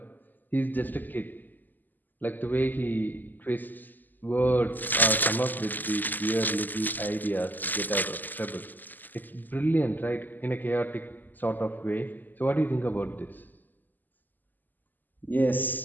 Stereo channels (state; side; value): late; right; 0.086 ms